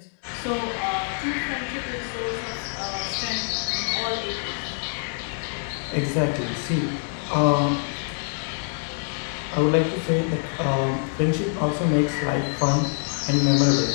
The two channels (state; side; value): silent; right; 62 dB below the other